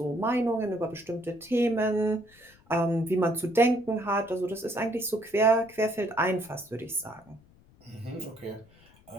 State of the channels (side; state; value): left; noise; rumble, 28 dB below the sound